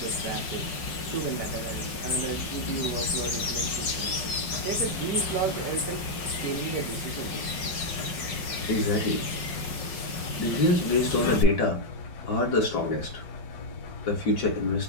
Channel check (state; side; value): late; right; 5.5 ms